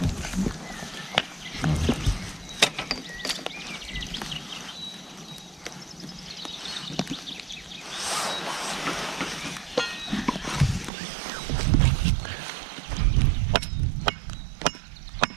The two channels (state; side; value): drops out; left; at 10.9 s